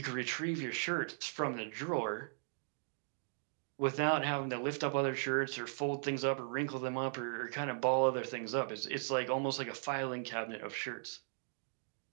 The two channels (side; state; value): left; silent; digital silence